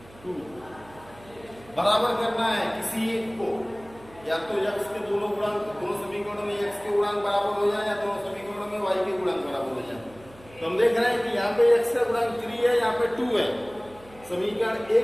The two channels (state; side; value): noise; right; hum, 23 dB below the sound